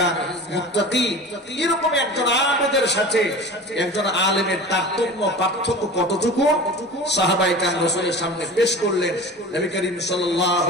মুত্তাকি। এরকম একজন আবেদের সাথে একজন আলেমের তারতম্য, পার্থক্য কতটুকু সাহাবায়ে কেরাম রাসূলের সামনে পেশ করলেন। নবী করিম সাল্লাল্লাহু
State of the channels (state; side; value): normal; both; correlation 0.36